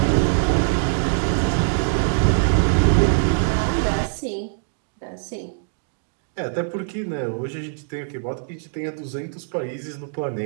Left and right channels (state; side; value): silent; left; digital silence